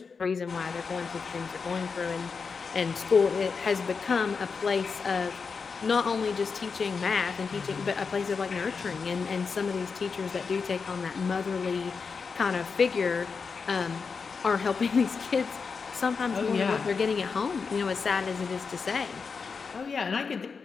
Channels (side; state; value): right; quieter; 5.2 dB